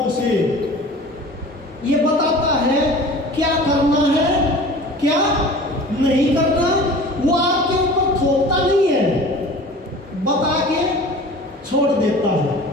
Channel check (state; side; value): normal; both; correlation 0.41